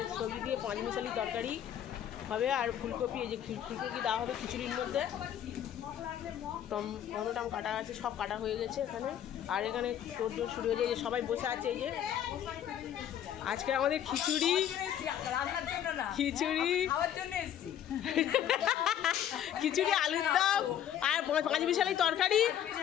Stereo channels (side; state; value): right; quieter; 10.3 dB